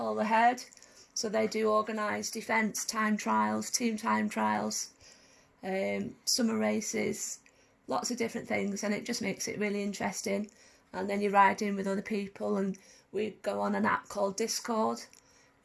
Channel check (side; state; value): both; identical; correlation 1.00